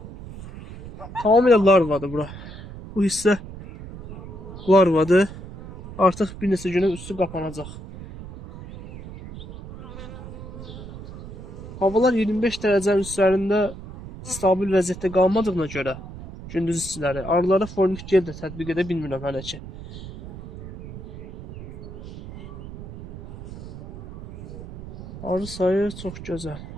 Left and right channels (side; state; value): right; noise; rumble, 13 dB below the sound